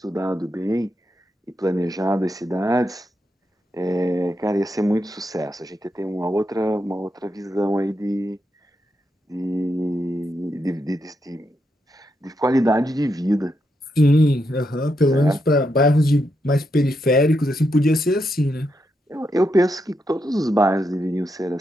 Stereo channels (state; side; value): normal; both; correlation 0.83